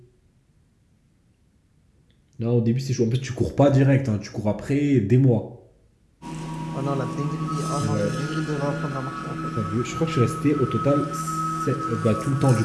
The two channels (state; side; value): identical; both; correlation 1.00